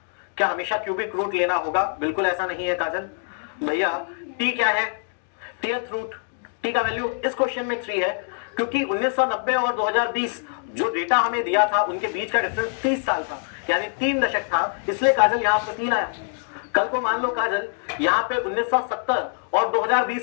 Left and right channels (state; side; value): silent; right; 59 dB below the other